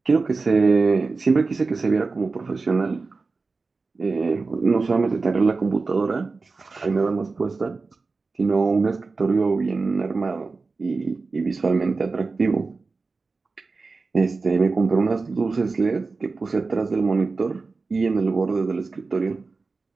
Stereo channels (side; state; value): left; quieter; 4.0 dB